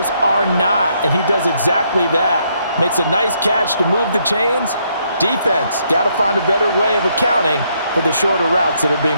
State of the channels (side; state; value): both; inverted; correlation -0.73